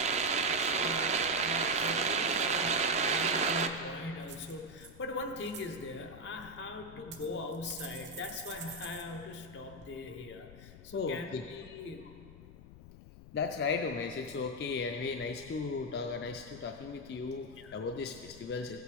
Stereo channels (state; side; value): noise; left; rumble, 16 dB below the sound